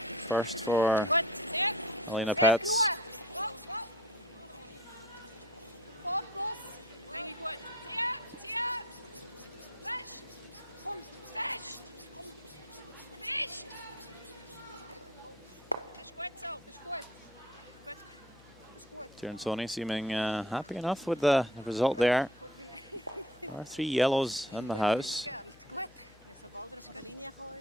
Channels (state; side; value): noise; left; hum, 25 dB below the sound